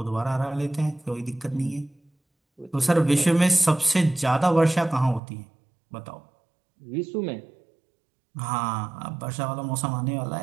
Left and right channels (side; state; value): left; drops out; at 5.2 s